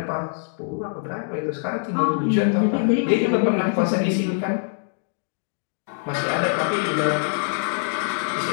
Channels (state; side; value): silent; right; digital silence